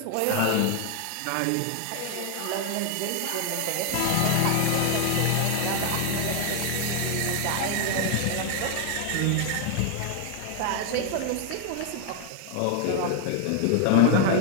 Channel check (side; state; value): both; different; correlation 0.00